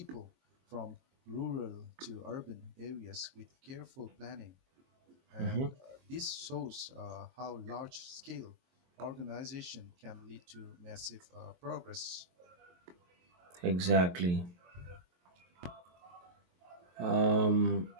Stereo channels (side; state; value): left; late; 23 ms